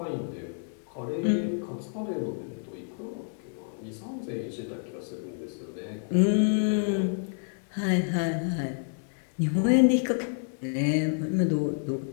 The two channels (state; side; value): silent; right; digital silence